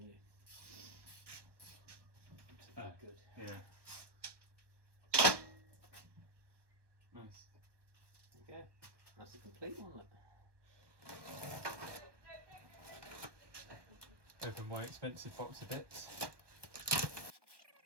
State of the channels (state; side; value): late; left; 1.2 ms